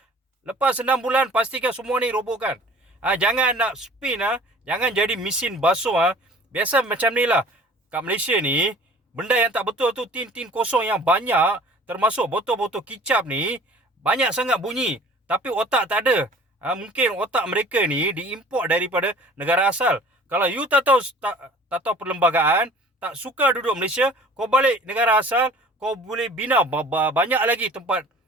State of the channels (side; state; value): both; normal; correlation 0.48